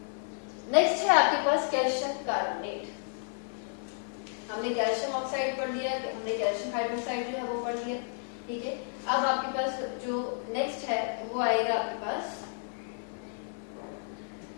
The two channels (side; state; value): right; silent; digital silence